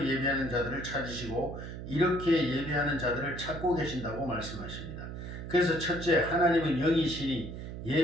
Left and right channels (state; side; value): noise; right; hum, 9 dB below the sound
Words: 예배하는 자들을 찾으시고 이렇게 예배하는 자들을 찾고 계신다고 말씀하십니다. 그래서 첫째, 하나님은 영이시니